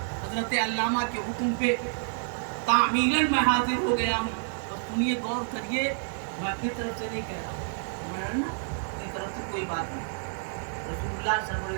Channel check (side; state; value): left; silent; 59 dB below the other